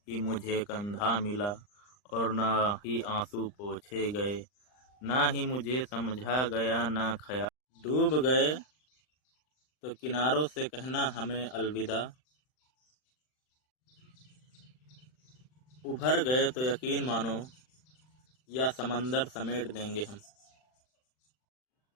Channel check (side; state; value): right; late; 39 ms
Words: ही मुझे कंधा मिला, और न ही आंसू पोंछे गए, ना ही मुझे समझा गया ना ख्याल। डूब गए तो किनारों से कहना हमें अलविदा, उभर गए तो यकीन मानो या समंदर समेट देंगे हम।